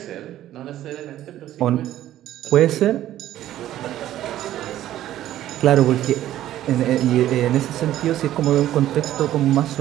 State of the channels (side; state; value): left; quieter; 13.1 dB